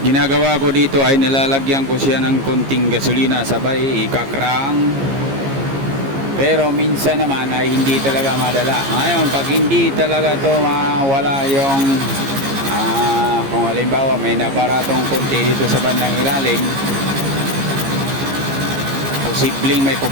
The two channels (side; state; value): left; late; 15 ms